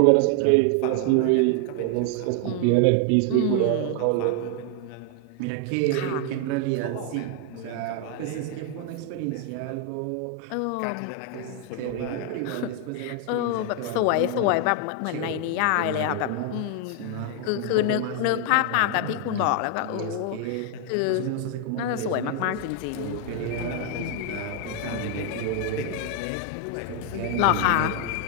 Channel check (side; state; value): both; different; correlation 0.00